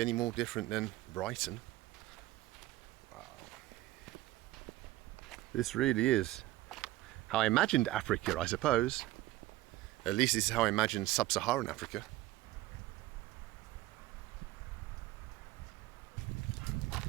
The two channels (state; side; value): quieter; left; 16.4 dB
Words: any more different than Brighton. Wow. This really is how I imagined Africa, I suppose. At least this is how I imagined sub-Saharan Africa.